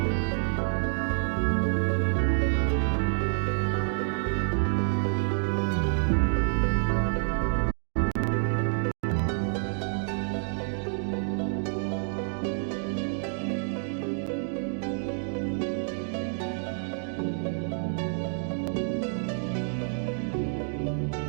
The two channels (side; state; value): left; silent; digital silence